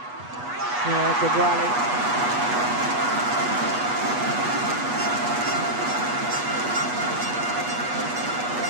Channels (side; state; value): left; late; 8.2 ms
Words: Yeah, good rally.